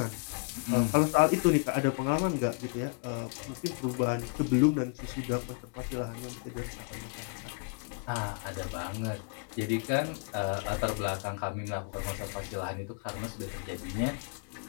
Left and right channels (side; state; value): right; quieter; 38.1 dB